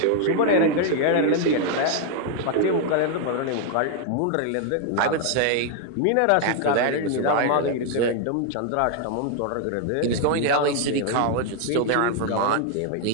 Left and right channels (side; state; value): both; different; correlation 0.00